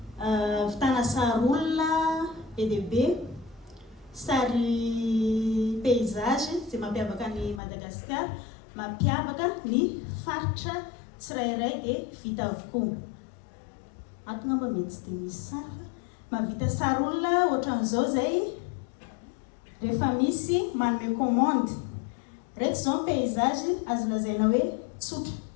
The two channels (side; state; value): right; drops out; at 7.6 s